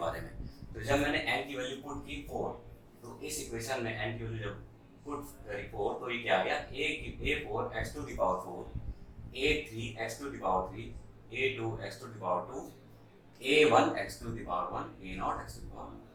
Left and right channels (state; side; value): identical; both; correlation 1.00